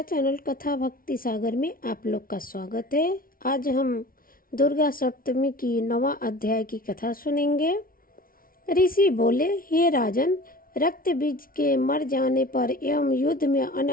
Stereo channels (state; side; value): late; right; 0.42 ms